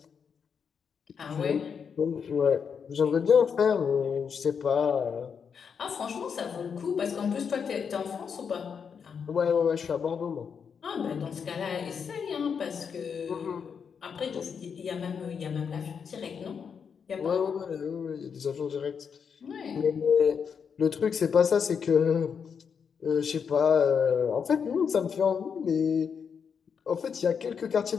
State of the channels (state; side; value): quieter; right; 6.6 dB